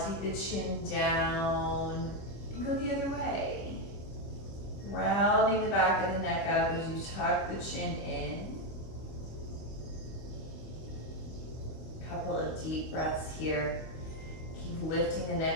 the chin down and go the other way. Rounding the back of the neck up as you tuck the chin in. Couple of deep breaths here. Keep lifting the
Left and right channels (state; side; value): late; right; 25 ms